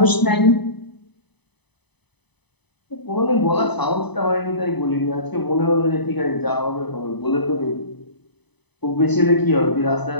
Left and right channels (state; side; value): late; right; 0.99 ms